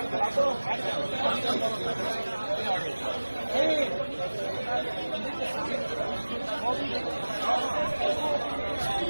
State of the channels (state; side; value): inverted; both; correlation -1.00